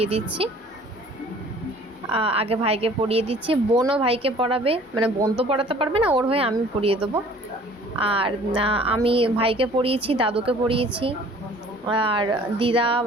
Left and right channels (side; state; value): both; normal; correlation 0.51